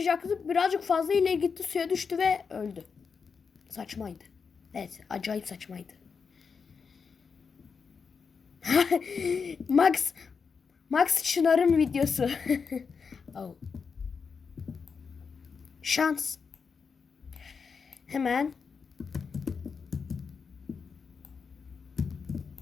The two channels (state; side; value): quieter; right; 5.6 dB